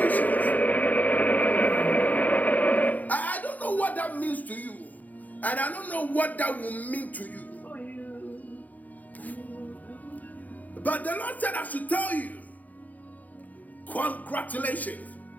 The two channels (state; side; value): late; right; 0.077 ms